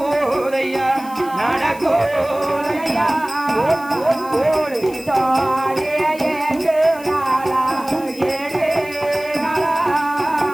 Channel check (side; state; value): left; noise; hiss, 20 dB below the sound